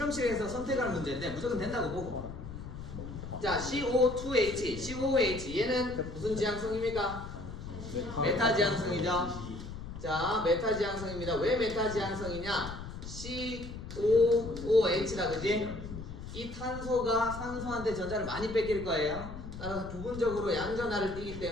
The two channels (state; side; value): noise; left; rumble, 10 dB below the sound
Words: 선택할 문제인데 무조건 된다고 보고. 자, CO2H, COOH 얘는 무슨 지향성입니까? 메타 지향성이죠. 자, 메타 지향성입니다. 왜 메타 지향성이냐? COOH다, 그지? 이 탄소가 산소한테 전자를 많이 뺏길 거예요. 따라서 부분적으로 양전하를 띠기